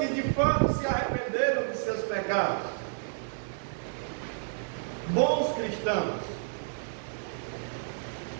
de fato se arrependeram de seus pecados, bons cristãos,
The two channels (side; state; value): left; silent; digital silence